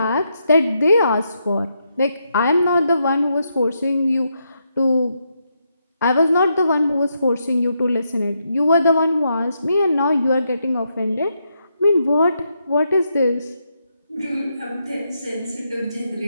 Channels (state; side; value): inverted; both; correlation -0.81